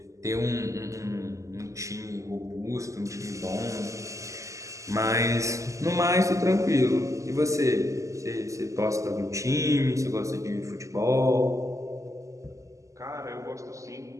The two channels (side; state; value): left; late; 0.16 ms